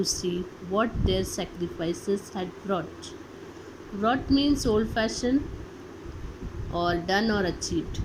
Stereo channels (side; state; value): both; identical; correlation 1.00